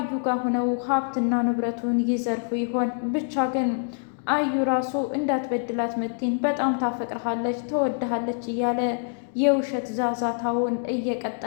ጋር ሆነው ሀብትና ንብረቱን ይዘርፉ ይሆን? ብቻ ግን አዩ ራሱ እንዳትበድላት መቲን በጣም ታፈቅርሃለች፣ ተወድሃለች እያለ የውሸት ዛዛታውን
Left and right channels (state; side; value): silent; right; digital silence